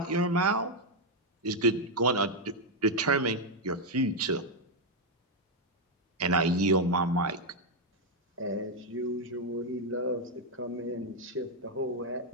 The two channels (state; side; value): normal; both; correlation 0.01